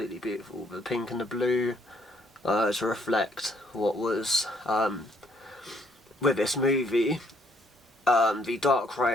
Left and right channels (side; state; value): both; normal; correlation 0.67